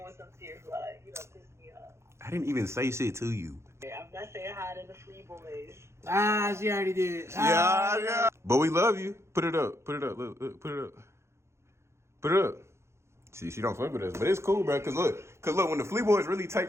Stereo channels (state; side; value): late; left; 0.13 ms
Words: what's up to your vlog. You don't piss me off. I didn't even say shit to you. I'm not saying hi to the free boys. Ah, she already did. Yeah. But we love you. Put it up. Look, put it up. See, she don't fuck with us, but it's cool, bro. Cause look, when the Flea Boys really